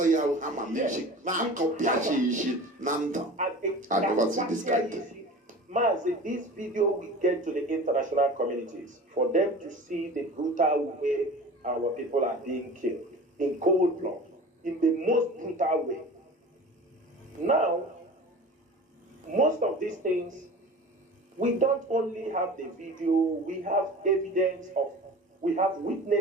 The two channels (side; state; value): both; normal; correlation 0.38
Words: never see this kind of thing. Mazi, this video will get to the international communities for them to see the brutal way our people are being killed in cold blood, in the most brutal way. Now, most of these things, we don't only have the video, we have evidence of, we have